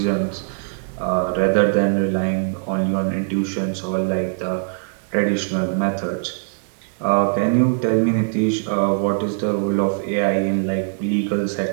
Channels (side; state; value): left; silent; digital silence